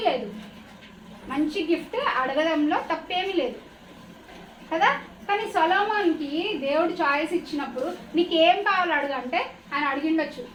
లేదు, మంచి గిఫ్ట్ అడగడంలో తప్పేమీ లేదు కదా. కానీ సొలొమోన్కి దేవుడు చాయిస్ ఇచ్చినప్పుడు నీకు ఏం కావాలి అడుగంటే ఆయన అడిగిండొచ్చు,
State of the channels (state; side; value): identical; both; correlation 1.00